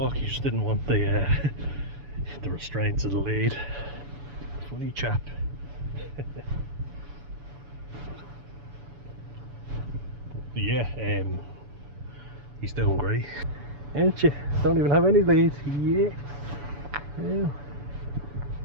he just didn't want the the restraints of the lead. Funny chap. Yeah, he's doing great. Ain't you? Don't even have any lead. Yeah. Yeah.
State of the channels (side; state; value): left; late; 7.0 ms